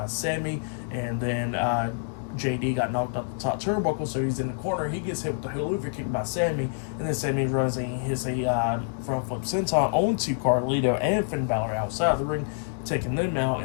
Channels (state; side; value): silent; right; 60 dB below the other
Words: Sammy, and then JD got knocked off the top turnbuckle, so he's in the corner. He gets hit with the haluva kick by Sammy, and then Sammy runs and he hits a front flip senton onto Carlito and Finn Balor outside the ring, taking them out,